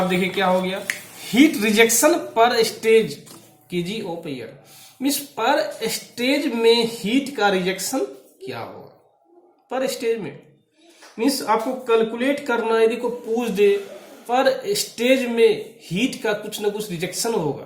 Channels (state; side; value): identical; both; correlation 1.00